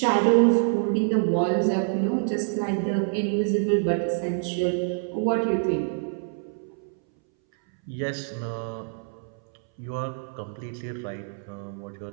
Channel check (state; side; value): silent; left; 61 dB below the other